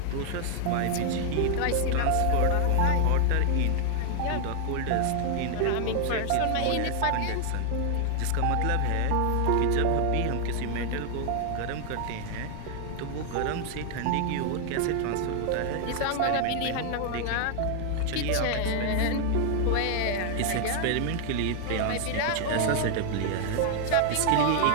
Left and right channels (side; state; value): both; different; correlation 0.00